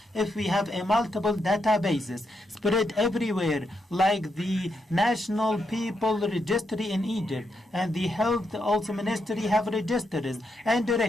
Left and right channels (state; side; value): normal; both; correlation 0.81